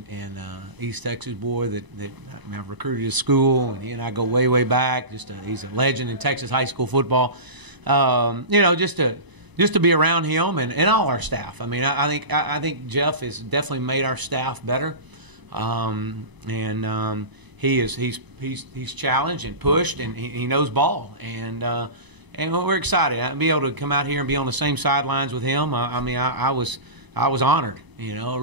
East Texas boy that I've recruited to school, and he and I go way back. He's a legend in Texas high school football. You know, just to be around him and all our staff. I mean, I think Jeff has definitely made our staff better, and he's challenged and pushed, and he knows ball, and we're excited. I'll be able to come out here and be on the same sidelines with him. I mean, I was honored, you know, it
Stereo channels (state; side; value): late; left; 1.0 ms